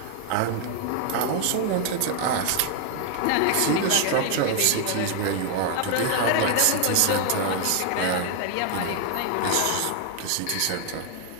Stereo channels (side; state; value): both; different; correlation 0.00